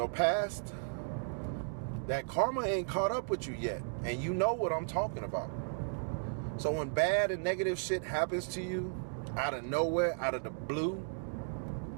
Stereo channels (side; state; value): left; silent; digital silence